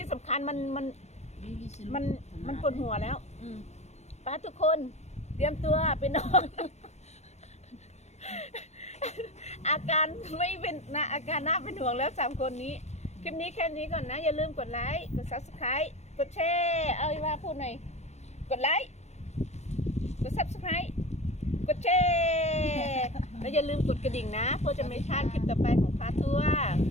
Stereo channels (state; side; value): late; right; 0.32 ms